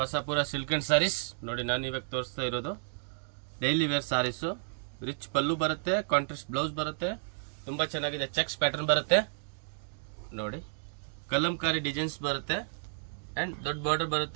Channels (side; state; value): left; silent; digital silence